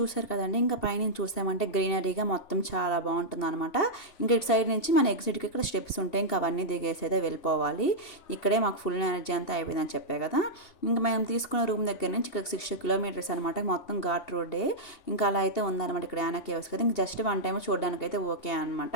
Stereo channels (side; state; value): right; late; 2.7 ms